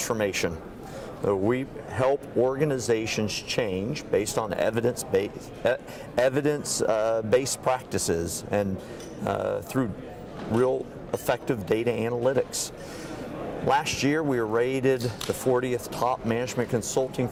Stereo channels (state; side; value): identical; both; correlation 1.00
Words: We help organizations change based on evidence-based practices and through real effective data analytics. Last year we were rated the 40th top management consulting